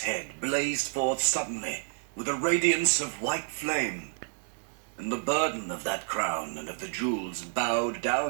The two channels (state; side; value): silent; left; 58 dB below the other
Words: head blazed forth suddenly, with a radiance of white flame, and the burden of that crown and of the jewels bowed